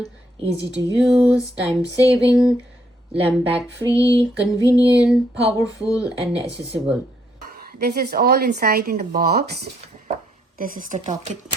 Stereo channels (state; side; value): normal; both; correlation 0.72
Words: easy to use, time saving, Lampblack-free, convenient, powerful and accessible. This is all inside in the box. This is the Tokit.